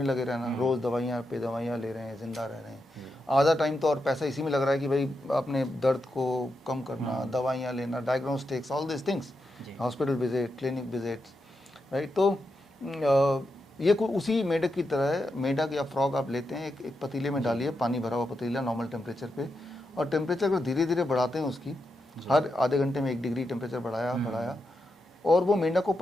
लगे रहना, रोज़ दवाइयाँ पे दवाइयाँ ले रहे हैं, जिंदा रह रहे हैं। आधा टाइम तो और पैसा इसी में लग रहा है कि भाई अपने दर्द को कम करना, दवाइयाँ लेना, diagnostics, all this things, hospital visit, clinic visits, right. तो ये उसी मेढक की तरह है। मेढक या फ्रॉग आप लेते हैं, एक पतीले में डालिए, पानी भरा हुआ पतीला नॉर्मल टेम्परेचर पे, और टेम्परेचर को धीरे धीरे बढ़ाते हैं उसकी, हर आधे घंटे में 1 डिग्री टेम्परेचर बढ़ाया, और वो मेंढक को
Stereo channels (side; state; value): both; normal; correlation 0.86